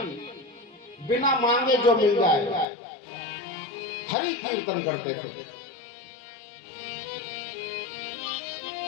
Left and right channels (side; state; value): right; drops out; at 2.7 s